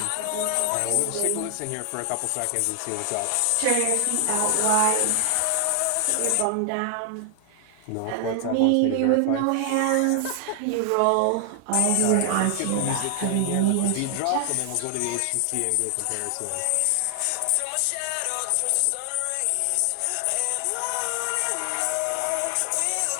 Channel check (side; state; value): both; different; correlation 0.00